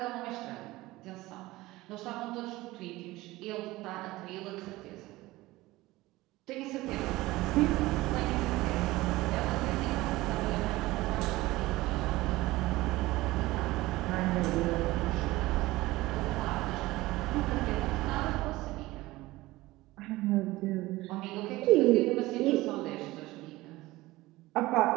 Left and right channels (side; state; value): left; quieter; 18.9 dB